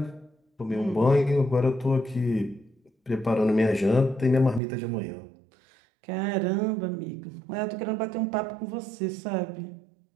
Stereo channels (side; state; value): left; drops out; at 4.6 s